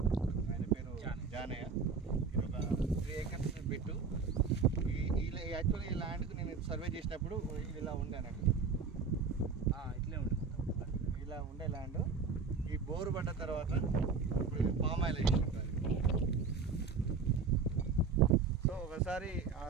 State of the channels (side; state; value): left; quieter; 5.0 dB